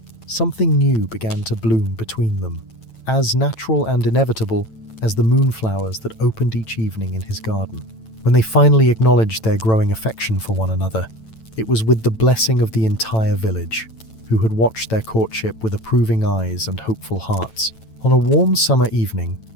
something new began to bloom between them, as natural and inevitable as the moonflowers that opened each evening in his garden. When they finally acknowledged their growing affection for one another, it was with the blessing of the entire village, who had watched their courtship with approving eyes and hopeful hearts. On a warm summer evening,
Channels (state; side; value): late; right; 9.0 ms